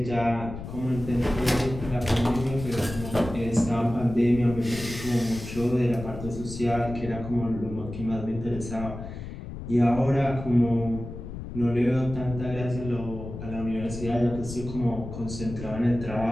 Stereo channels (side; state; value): left; noise; rumble, 10 dB below the sound